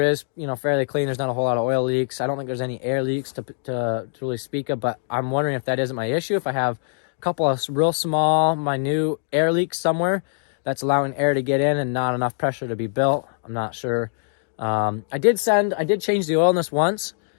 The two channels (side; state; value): right; silent; digital silence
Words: is fairly clean. There's not a whole lot of oil leaks. I don't think there's any air leaks to really speak of, but I'm wondering if that isn't my issue. If I have a couple of real small, minute air leaks somewhere that's allowing air to get in and not enough pressure to be built, I'm not sure. I did change the oil in this once